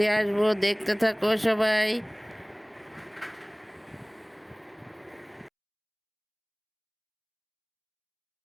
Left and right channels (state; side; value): identical; both; correlation 1.00